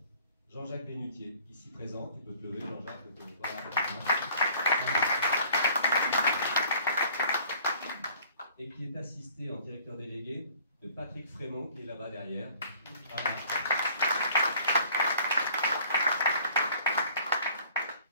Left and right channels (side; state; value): both; inverted; correlation -0.53